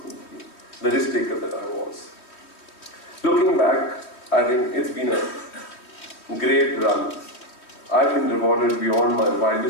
the risk taker that I was. Looking back, I think it's been a great run. I've been rewarded beyond my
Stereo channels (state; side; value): late; right; 3.1 ms